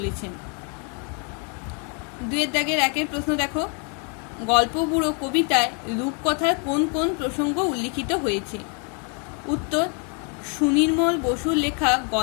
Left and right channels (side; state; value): right; quieter; 37.6 dB